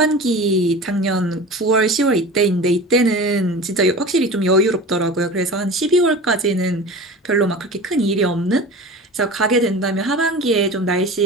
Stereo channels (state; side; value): normal; both; correlation 0.34